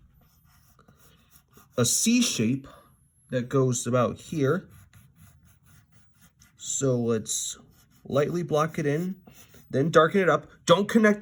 a C shape that goes about here. So let's lightly block it in, then darken it up. Don't connect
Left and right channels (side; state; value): both; identical; correlation 1.00